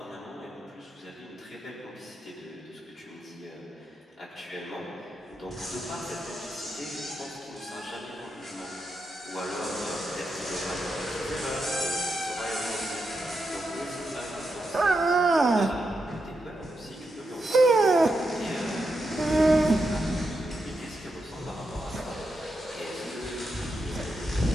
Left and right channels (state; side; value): normal; both; correlation 0.85